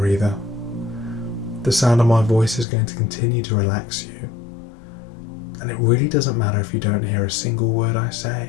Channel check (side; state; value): right; drops out; at 2.7 s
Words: either. The sound of my voice is going to continue to relax you, and it really doesn't matter if you don't hear a single word I